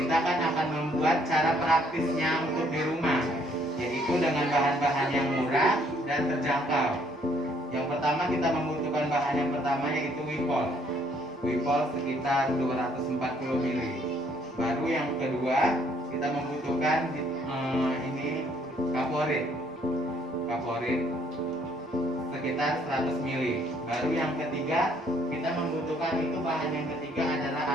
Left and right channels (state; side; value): normal; both; correlation 0.65